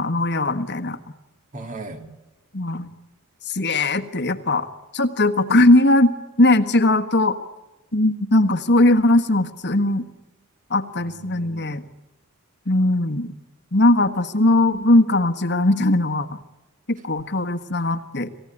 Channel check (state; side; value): normal; both; correlation 0.46